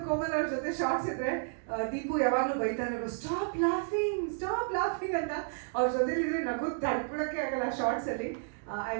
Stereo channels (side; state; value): left; silent; digital silence